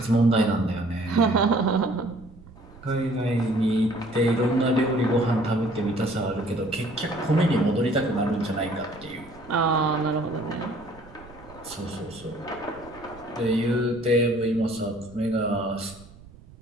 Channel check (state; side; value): noise; right; rumble, 21 dB below the sound